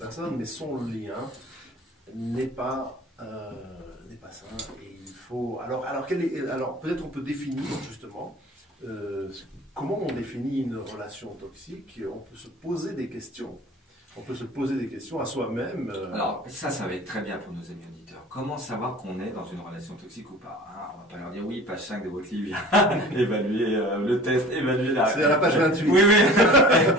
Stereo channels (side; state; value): both; normal; correlation 0.43